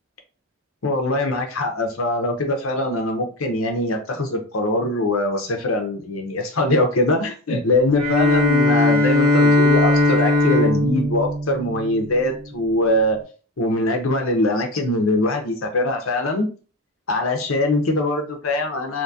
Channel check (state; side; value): normal; both; correlation 0.25